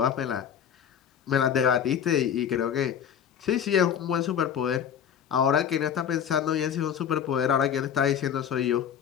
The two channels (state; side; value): quieter; right; 8.7 dB